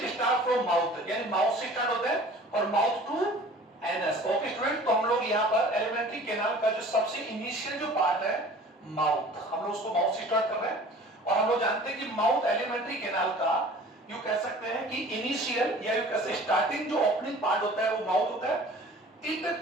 स्टार्ट फ्रॉम माउथ, यानी माउथ से स्टार्ट होता है और mouth to anus. Okay student, तो हम लोग यहाँ पर एलिमेंट्री कैनाल का जो सबसे इनिशियल जो पार्ट है माउथ, हम लोग उसको माउथ से स्टार्ट कर रहे हैं। और हम लोग जानते हैं कि माउथ एलिमेंट्री कैनाल का यू कह सकते हैं कि इनिशियल या यू कह सकते स्टार्टिंग जो ओपनिंग पार्ट होता है वो माउथ होता है। इट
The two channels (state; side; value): normal; both; correlation 0.46